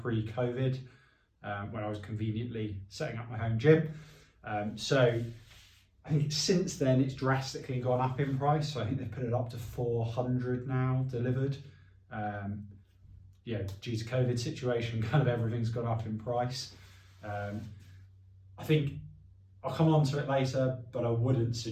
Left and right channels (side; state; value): both; identical; correlation 1.00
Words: when I was conveniently setting up my home gym. So I think since then it's drastically gone up in price. So I think they've put it up to 400 now delivered. Yeah, due to COVID situation, kind of everything's gone up in price. I think I'll come on to it later, but I wouldn't